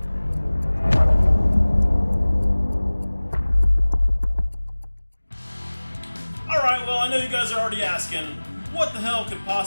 Alright, well I know you guys are already asking, what the hell could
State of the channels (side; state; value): both; inverted; correlation -1.00